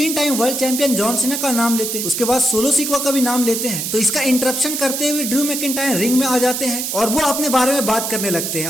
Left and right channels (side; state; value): right; noise; hiss, 3 dB below the sound